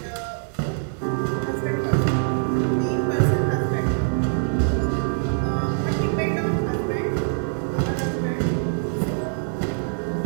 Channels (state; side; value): silent; left; digital silence